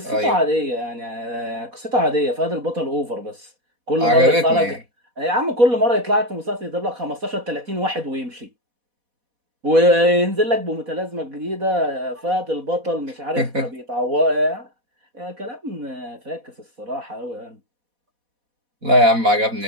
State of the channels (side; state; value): left; late; 4.1 ms